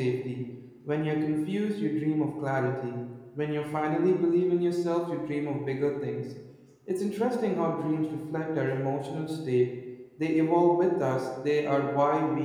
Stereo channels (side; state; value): both; identical; correlation 1.00